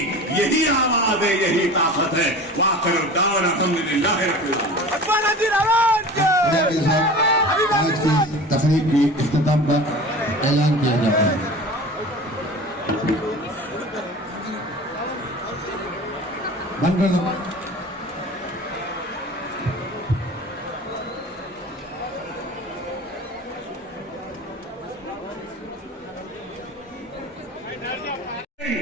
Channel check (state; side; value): normal; both; correlation 0.37